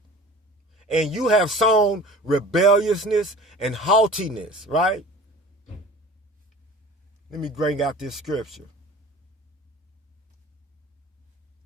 And you have sown rebelliousness and haughtiness, right? Let me bring out this scripture.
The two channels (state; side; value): normal; both; correlation 0.42